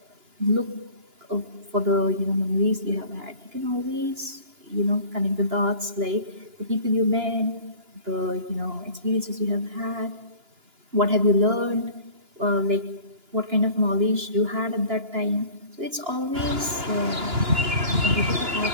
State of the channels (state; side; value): late; left; 2.9 ms